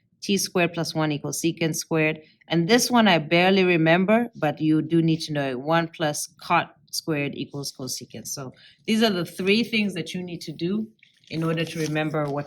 t squared plus 1 equals secant squared. And this one I barely remember, but you do need to know it. 1 plus cot squared equals cosecant. So these are the three things that you need to do in order to remember what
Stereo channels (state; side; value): identical; both; correlation 1.00